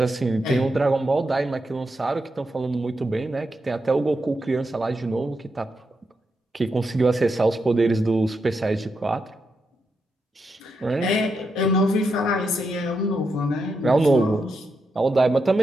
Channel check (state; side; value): normal; both; correlation 0.84